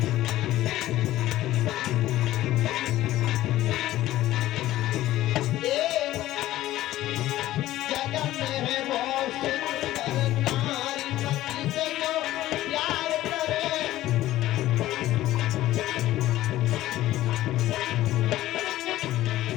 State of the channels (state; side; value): quieter; right; 15.0 dB